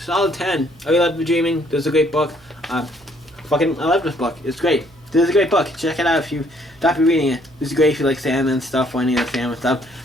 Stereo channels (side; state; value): right; noise; hum, 28 dB below the sound